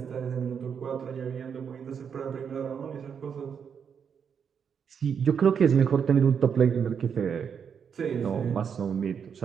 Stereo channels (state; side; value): quieter; left; 7.1 dB